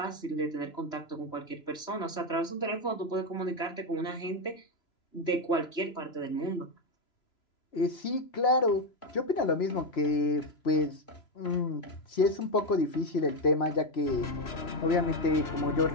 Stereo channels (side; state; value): right; late; 3.0 ms